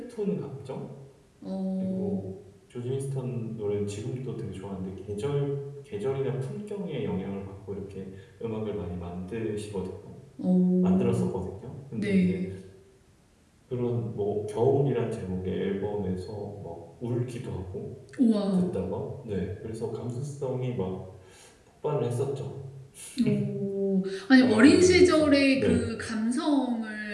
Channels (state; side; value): identical; both; correlation 1.00